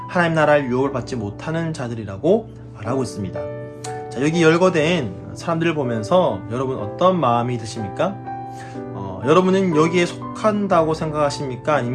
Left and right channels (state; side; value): identical; both; correlation 1.00